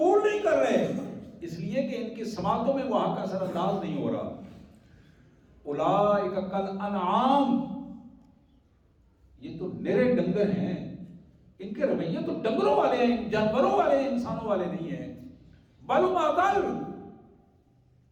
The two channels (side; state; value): both; identical; correlation 1.00